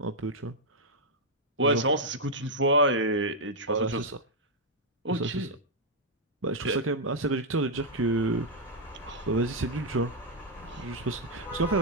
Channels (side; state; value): both; normal; correlation -0.03